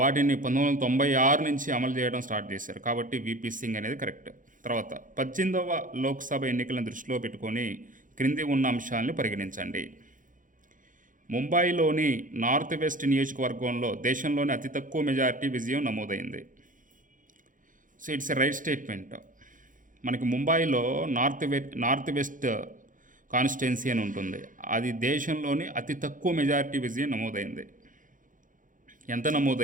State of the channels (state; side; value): late; left; 0.38 ms